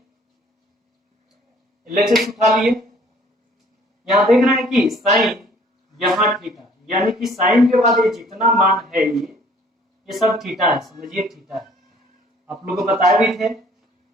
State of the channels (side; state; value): both; normal; correlation 0.57